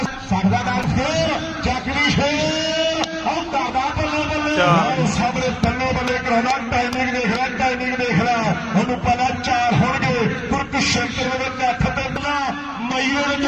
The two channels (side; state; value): both; identical; correlation 1.00